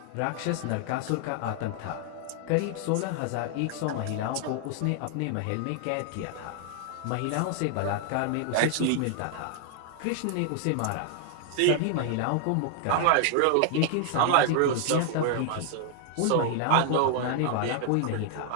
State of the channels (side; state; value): both; different; correlation 0.00